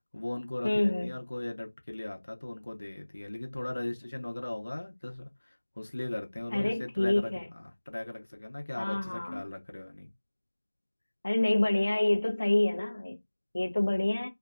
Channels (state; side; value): inverted; both; correlation -1.00